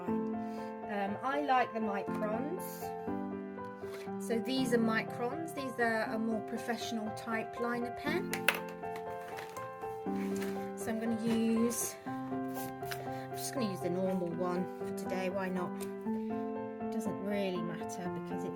I like the microns. So these are microns. These are a more professional type liner pen. So I'm going to use, the normal one for today. Why not? It doesn't really matter because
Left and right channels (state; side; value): identical; both; correlation 1.00